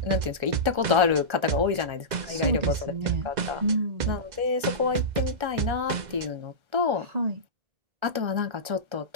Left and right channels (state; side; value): late; left; 1.3 ms